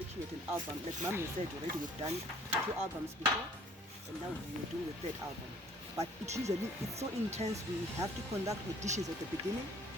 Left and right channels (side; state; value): both; normal; correlation 0.56